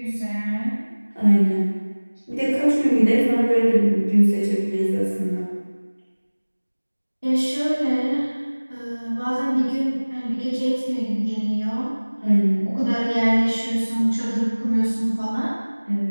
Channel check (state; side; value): inverted; both; correlation -1.00